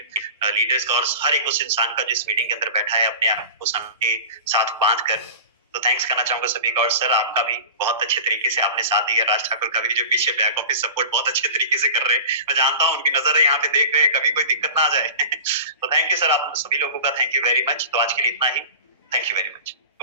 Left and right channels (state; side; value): inverted; both; correlation -0.34